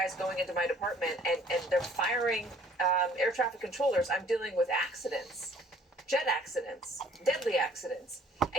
going into my department and they're firing air traffic controllers. I'm dealing with accidents, jet accidents, deadly accidents.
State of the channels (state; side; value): normal; both; correlation 0.57